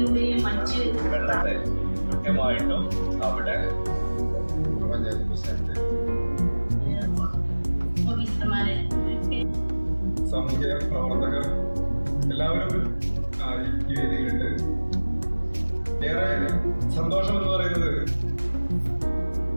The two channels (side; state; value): both; inverted; correlation -1.00